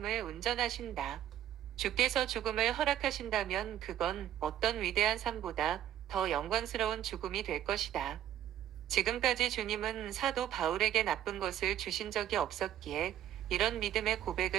운전하신다. 주께서 죽음을 허락하신다면 그건 어떤 위대한 삶보다 더 영광스러운 죽음이 될 것이다. 지금까지 주님은 사도 바울에게 나쁜 것을 주신 적이 없었기에 이런 믿음의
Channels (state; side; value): quieter; left; 11.4 dB